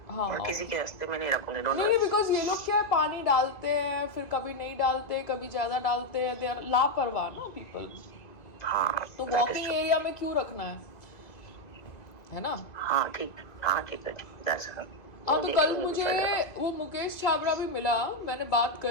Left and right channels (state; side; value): late; right; 2.0 ms